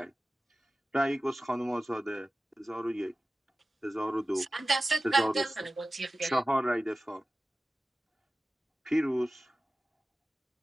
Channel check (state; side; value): normal; both; correlation 0.95